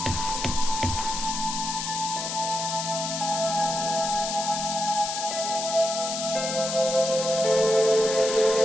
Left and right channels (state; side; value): noise; left; hiss, 4 dB below the sound